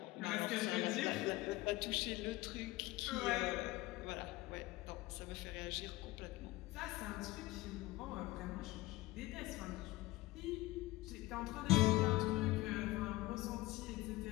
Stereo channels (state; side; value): quieter; right; 19.0 dB